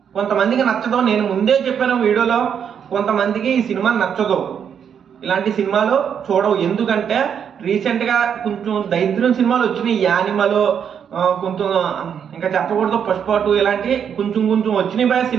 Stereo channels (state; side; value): quieter; left; 7.9 dB